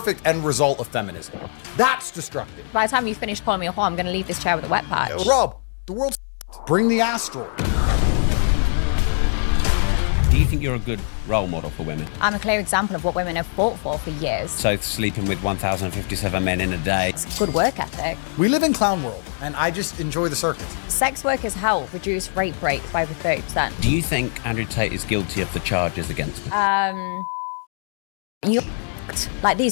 end result of feminism. That's destructive. By the time you finish calling me a whore, I'm going to leave this chair with a wet patch. Rob, the world's bring the asteroid. Do you think you're a good role model for women? I'm a clear example of what women have fought for years. So sleeping with 1,057 men in a day. It's good work ethic. We live in clown world, and I just enjoy the circus. Sex workers help reduce rape rates by over 30%. Do you think Andrew Tate is guilty of the charges against him? You like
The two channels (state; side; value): silent; right; digital silence